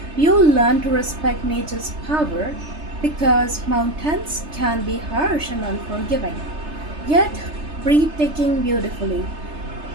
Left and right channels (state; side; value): late; left; 3.3 ms